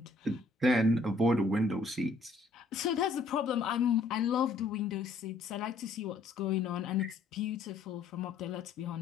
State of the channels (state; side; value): quieter; right; 3.5 dB